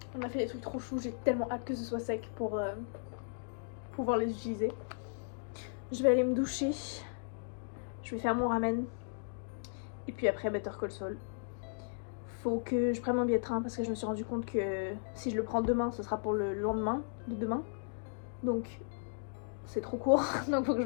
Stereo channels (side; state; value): right; silent; digital silence